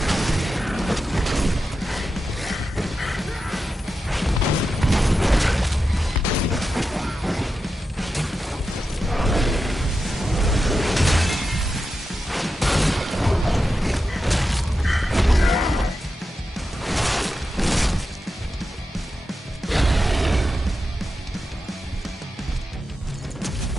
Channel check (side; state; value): both; normal; correlation 0.90